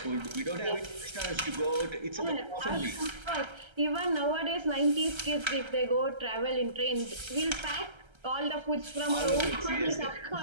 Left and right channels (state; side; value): late; left; 1.3 ms